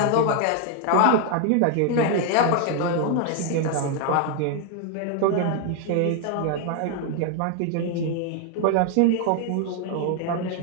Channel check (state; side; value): different; both; correlation 0.00